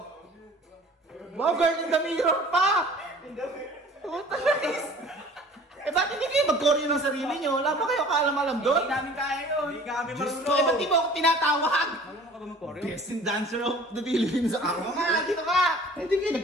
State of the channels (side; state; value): both; normal; correlation 0.47